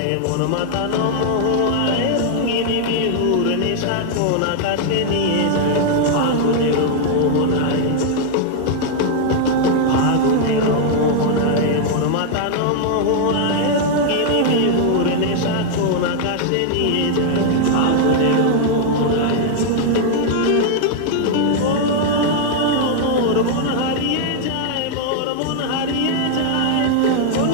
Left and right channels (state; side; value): different; both; correlation -0.01